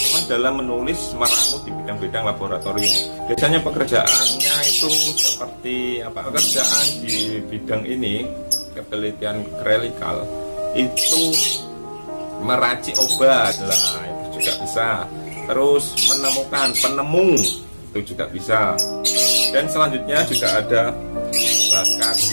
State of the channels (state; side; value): inverted; both; correlation -1.00